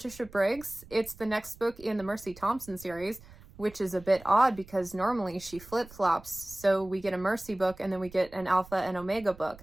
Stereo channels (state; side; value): noise; right; rumble, 21 dB below the sound